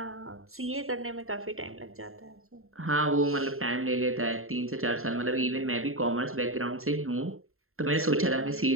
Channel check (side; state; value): left; late; 0.61 ms